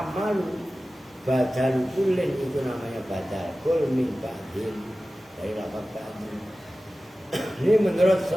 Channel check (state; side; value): normal; both; correlation 0.95